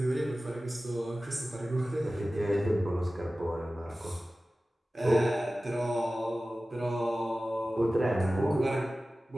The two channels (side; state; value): both; normal; correlation 0.96